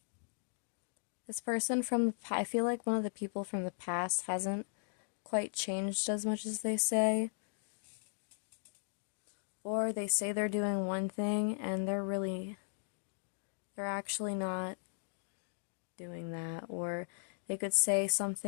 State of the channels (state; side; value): silent; right; digital silence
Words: This person I feel like one of the people from the past hasn't quite changed as much as they say. Or they say they're doing one thing and they're actually not doing that. Or they could say